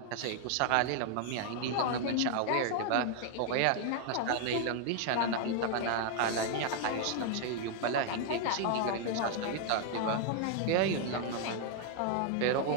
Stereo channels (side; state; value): both; different; correlation 0.00